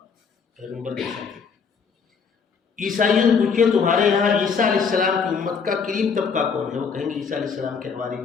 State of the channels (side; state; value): right; quieter; 5.9 dB